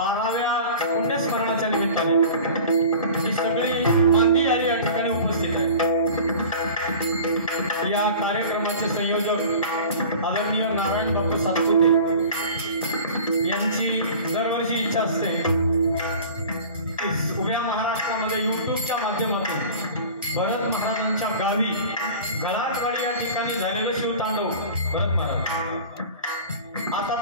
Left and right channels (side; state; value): both; inverted; correlation -0.40